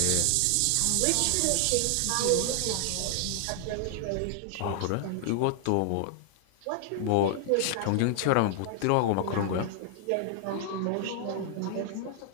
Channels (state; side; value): different; both; correlation 0.00